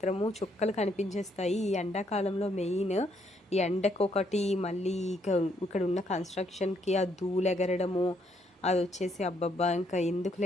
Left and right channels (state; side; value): normal; both; correlation 0.72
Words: చుక్కలు కనిపించేస్తాయి. ఈ ఎండాకాలంలో మెయిన్ ఈ ఎండకొకటి, మళ్ళీ ఇక్కడ ఉన్న కన్స్ట్రక్షన్కి ఆ ధూళి ఎగరడము, అది వచ్చేసి అబ్బబ్బా ఇంకా